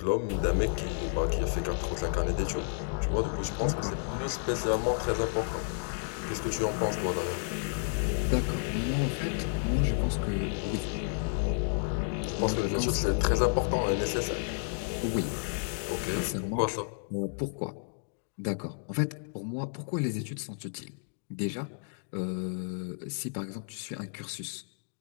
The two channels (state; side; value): silent; right; digital silence